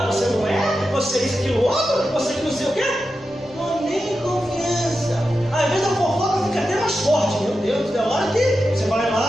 você não é, você isso, aquilo, outro, você que não sei o quê. Não nem confiança. Às vezes a fofoca fica até mais forte. Meu Deus, é hora que você vai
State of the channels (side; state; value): both; normal; correlation 0.90